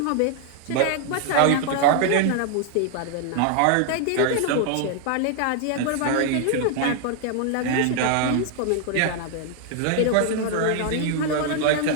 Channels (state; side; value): different; both; correlation 0.00